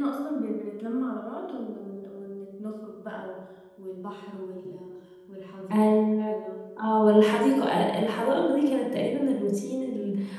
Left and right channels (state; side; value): identical; both; correlation 1.00